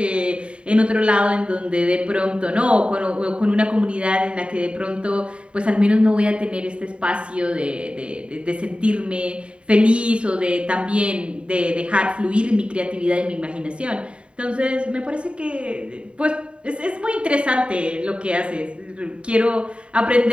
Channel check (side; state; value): left; late; 0.057 ms